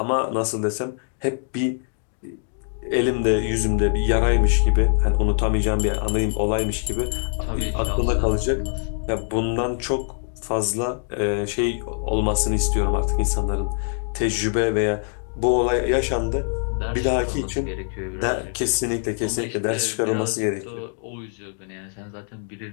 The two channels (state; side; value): silent; right; digital silence